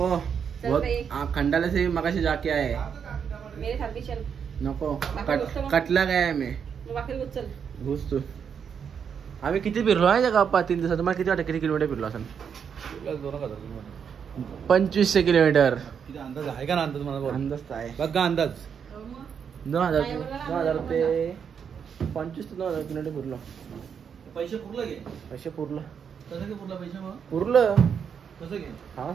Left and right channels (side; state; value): left; quieter; 7.2 dB